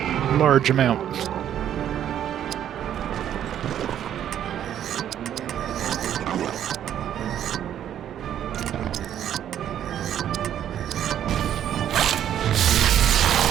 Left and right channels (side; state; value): left; quieter; 10.4 dB